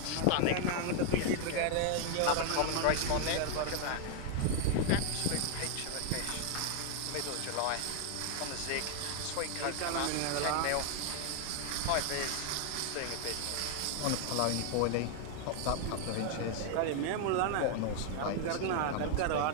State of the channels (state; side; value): different; both; correlation 0.00